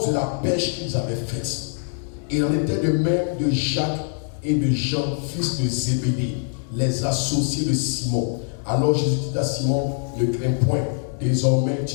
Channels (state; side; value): silent; right; digital silence